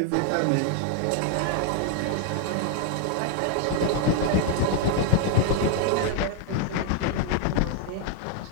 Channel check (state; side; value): different; both; correlation 0.00